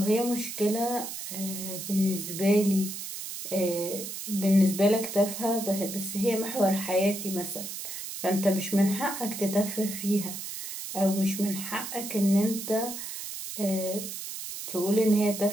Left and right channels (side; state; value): right; noise; hiss, 8 dB below the sound